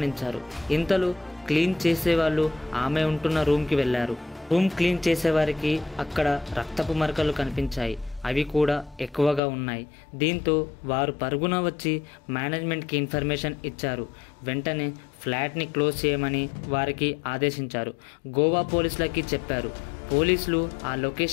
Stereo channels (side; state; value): right; drops out; at 9.4 s